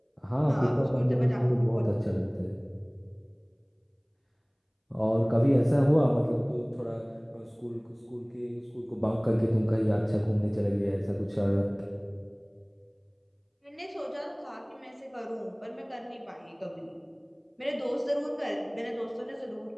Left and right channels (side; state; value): both; identical; correlation 1.00